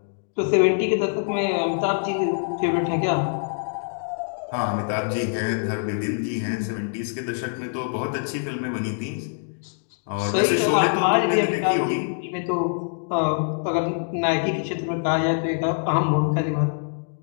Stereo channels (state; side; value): silent; right; digital silence